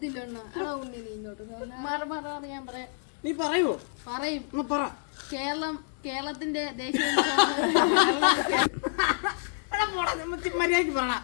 അണ്ണ. എടാ ഉണ്ണി നീ ഇങ്ങോട്ട് ഞാൻ പറയാം. നീ പറയോ? പറയും. പറ. കേരളത്തിന്റെ ദേശീയ മര്യാദക്ക് പറ.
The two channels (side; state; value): right; silent; digital silence